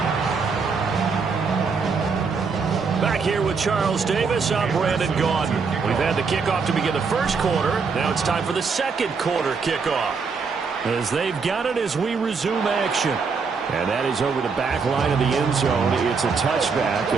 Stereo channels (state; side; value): quieter; left; 5.1 dB